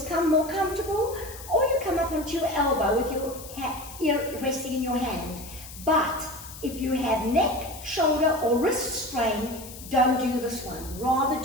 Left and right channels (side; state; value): left; noise; hiss, 15 dB below the sound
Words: more comfortable, or you come up onto your elbow with your ear resting in your hand. But if you have neck, shoulder, or wrist strain, don't do this one. Rather